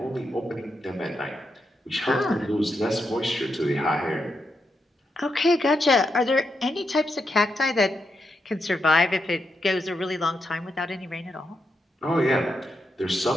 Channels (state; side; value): normal; both; correlation 0.83